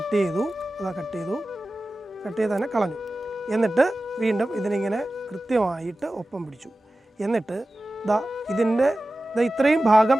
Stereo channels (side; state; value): both; normal; correlation 0.95